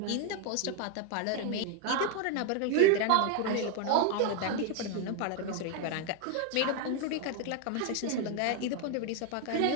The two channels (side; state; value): both; different; correlation 0.01